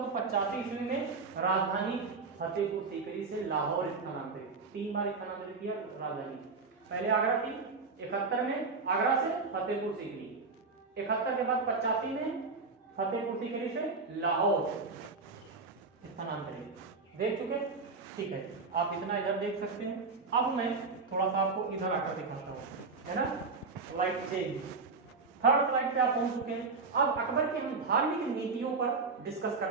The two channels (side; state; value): left; quieter; 4.3 dB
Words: ईस्वी में राजधानी फतेहपुर सीकरी से लाहौर स्थानांतरित, 3 बार स्थानांतरित किया राजधानी। पहले आगरा थी, 71 में आगरा से फतेहपुर सीकरी, 71 के बाद 85 में फतेहपुर सीकरी से लाहौर स्थानांतरित। देख चुके, ठीक है, आप इतना इधर देख सकते हैं। अब मैं थोड़ा सा आपको इधर आकर दिखाता हूँ, है ना, स्लाइड चेंज। थर्ड स्लाइड पे आप पहुंच चुके हैं। अब अकबर की हम धार्मिक नीतियों पर डिस्कस